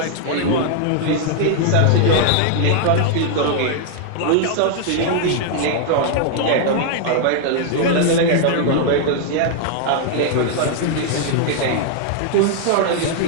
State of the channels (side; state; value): both; different; correlation 0.00